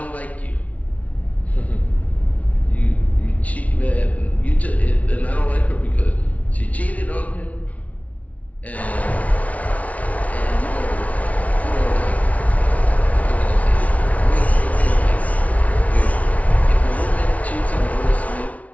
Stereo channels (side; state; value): right; late; 0.068 ms